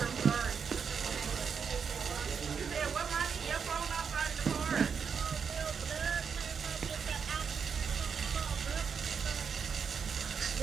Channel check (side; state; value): left; quieter; 6.4 dB